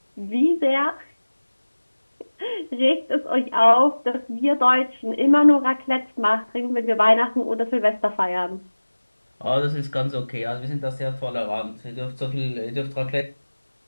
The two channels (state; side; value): inverted; both; correlation -1.00